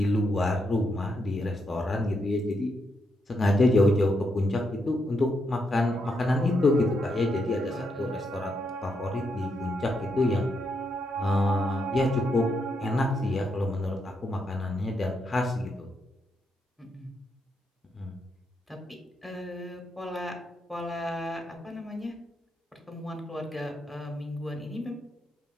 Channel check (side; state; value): both; normal; correlation 0.80